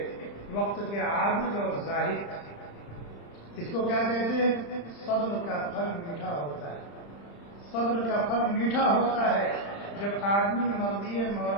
وقت کے عابد اور زاہد تھے۔ اس کو کیا کہتے ہیں؟ صبر کا پھل میٹھا ہوتا ہے، صبر کا پھل میٹھا ہوتا ہے جب آدمی مرضی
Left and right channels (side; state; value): right; late; 35 ms